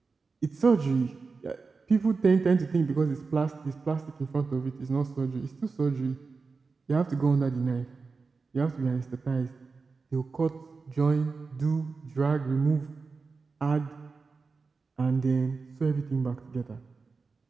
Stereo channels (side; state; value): left; quieter; 4.4 dB